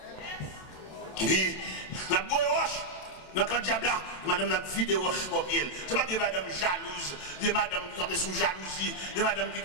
Et puis, La boue roche. Dans le diable là, madame n'a vidé roche pour pied. C'est pas des madame jalouses, des madame qui campent sous jalousie, des madame qui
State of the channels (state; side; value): late; right; 27 ms